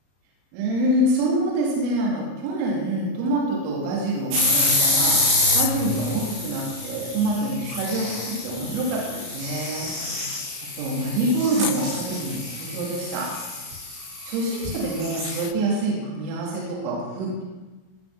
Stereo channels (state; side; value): late; left; 33 ms